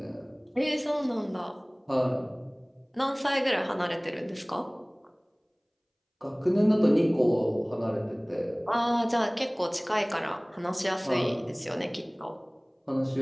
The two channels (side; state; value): both; identical; correlation 1.00